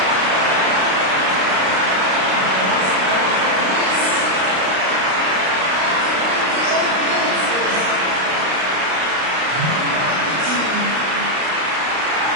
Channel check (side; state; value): left; late; 32 ms